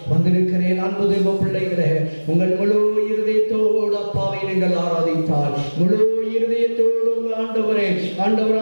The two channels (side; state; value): both; inverted; correlation -1.00